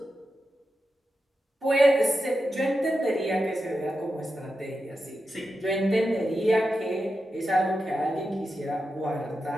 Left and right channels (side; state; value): both; normal; correlation 0.89